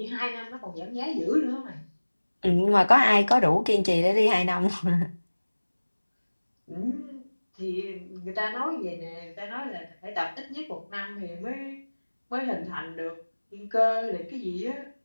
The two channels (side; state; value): both; inverted; correlation -1.00